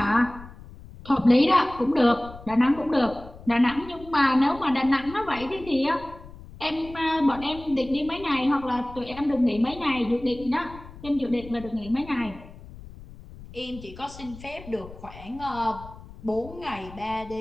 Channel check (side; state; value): left; noise; rumble, 17 dB below the sound